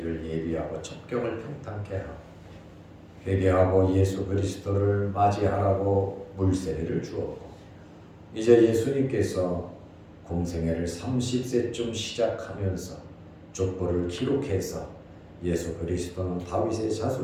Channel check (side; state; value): both; identical; correlation 1.00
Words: 예비하고 첩경을 평탄케 하고 회개하고 예수 그리스도를 맞이하라고 물세례를 주었고, 이제 예수님께서 공생애를 30세쯤 시작하면서 족보를 기록해서 예수 그리스도는 다윗의